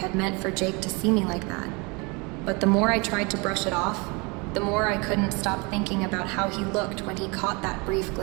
meant for Jake to see me like that. But the more I tried to brush it off, the more I couldn't stop thinking about how he looked when he caught that brief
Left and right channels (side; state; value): left; quieter; 28.9 dB